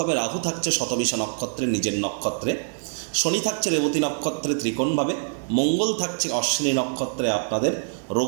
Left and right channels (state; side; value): silent; left; digital silence